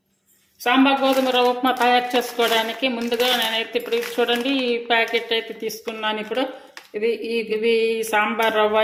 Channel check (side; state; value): both; identical; correlation 1.00